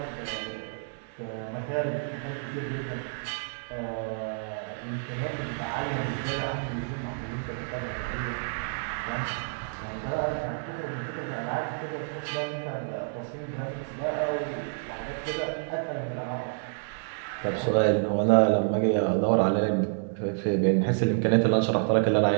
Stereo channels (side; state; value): left; silent; digital silence